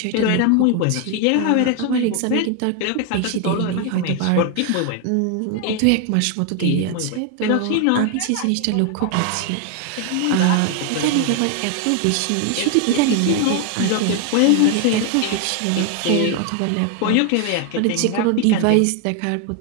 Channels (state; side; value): different; both; correlation 0.00